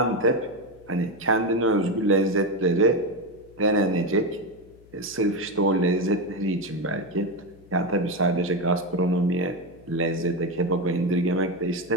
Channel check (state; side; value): noise; left; hum, 25 dB below the sound